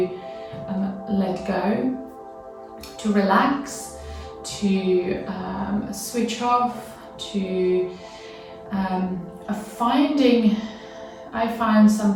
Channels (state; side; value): identical; both; correlation 1.00